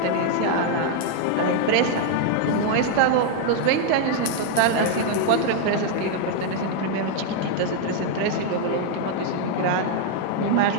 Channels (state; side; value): different; both; correlation 0.00